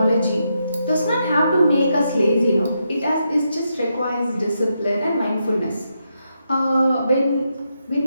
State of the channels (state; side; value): inverted; both; correlation -0.82